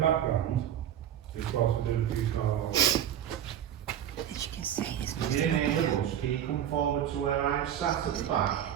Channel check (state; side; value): quieter; left; 10.3 dB